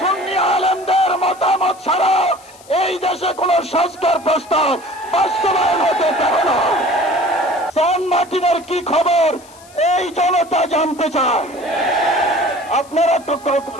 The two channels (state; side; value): noise; left; hiss, 24 dB below the sound